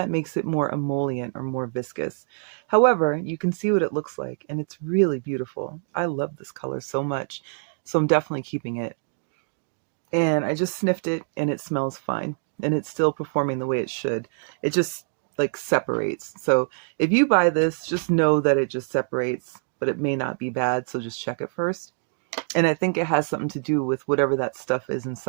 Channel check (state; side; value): silent; left; digital silence